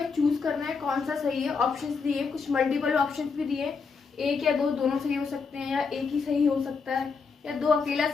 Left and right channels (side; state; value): right; quieter; 5.1 dB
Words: चूज करना है कौन सा सही है। ऑप्शंस दिए, कुछ मल्टीपल ऑप्शंस भी दिए, एक या दो दोनों सही हो सकते हैं, या एक ही सही हो सकता है, या दो अकेला